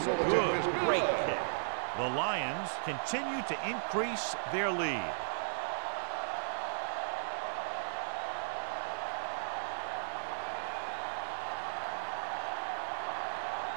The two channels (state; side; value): silent; left; digital silence